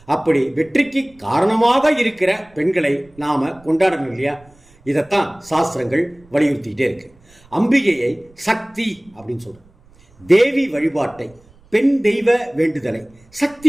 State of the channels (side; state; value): right; noise; rumble, 29 dB below the sound